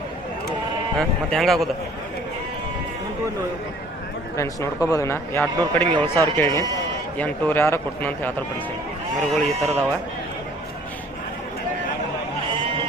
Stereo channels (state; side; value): normal; both; correlation 0.54